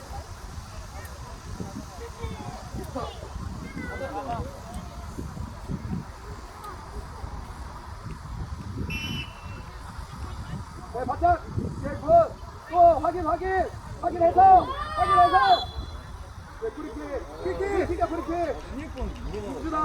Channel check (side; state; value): both; identical; correlation 1.00